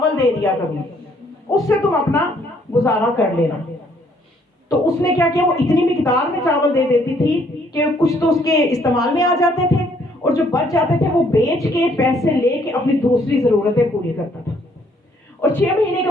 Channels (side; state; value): both; normal; correlation 0.66